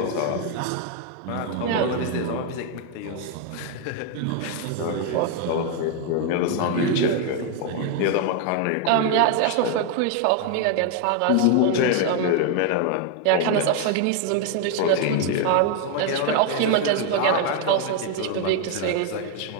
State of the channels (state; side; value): different; both; correlation 0.01